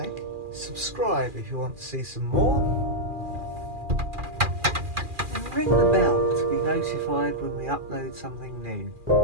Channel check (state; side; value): late; left; 2.4 ms